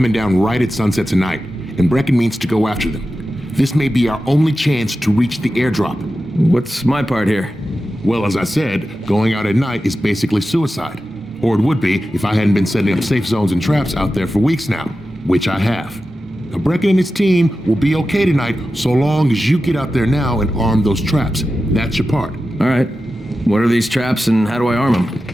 down right at sunset tonight, and Brecken means to go after them. This may be our only chance to reach the airdrop. What's my part here? Well, as I said, going out at night is basically suicide. Or it would be if I hadn't been setting up safe zones and traps out there for weeks now, which I have. Now, Brecken and his team will be okay tonight so long as you get out there now and arm those traps. That's your part. All right. What are these traps and how do I arm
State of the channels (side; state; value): both; normal; correlation 0.93